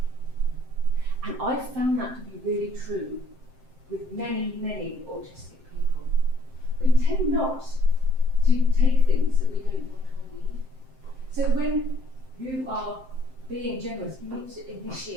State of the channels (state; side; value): late; left; 7.7 ms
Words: And I found that to be really true with many, many autistic people. We tend not to take things that we don't want or need. So when you are being generous, you need to